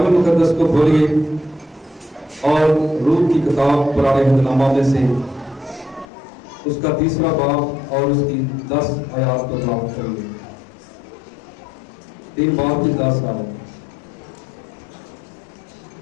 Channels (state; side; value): drops out; right; at 6.1 s